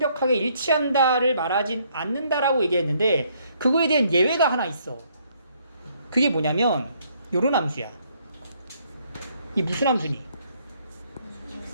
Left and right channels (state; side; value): inverted; both; correlation -0.68